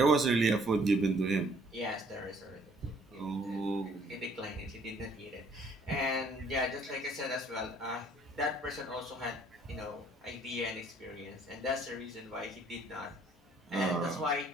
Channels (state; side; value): normal; both; correlation 0.60